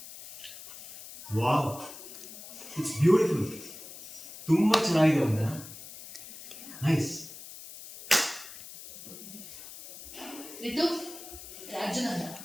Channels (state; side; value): noise; left; hiss, 14 dB below the sound